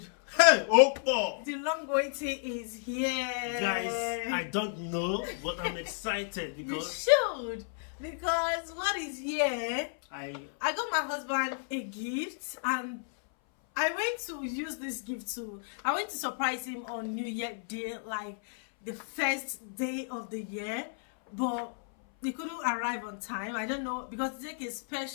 Hey, Opo! The long waiting is here. Guys, I don't know, but I'm excited because you should. Because what is here, I got my husband a gift, and I went to use this gift too. I went to surprise him on New Year Day, like the first day of the year, but he couldn't arrive on time. I don't know, because it takes a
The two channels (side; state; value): right; silent; 56 dB below the other